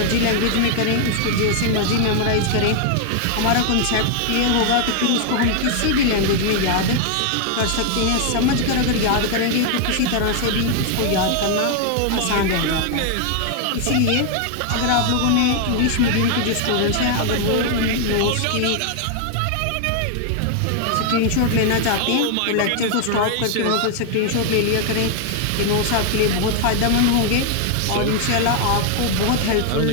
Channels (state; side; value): different; both; correlation 0.00